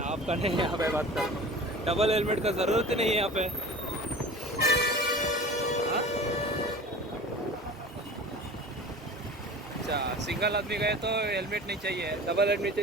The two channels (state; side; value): normal; both; correlation 0.38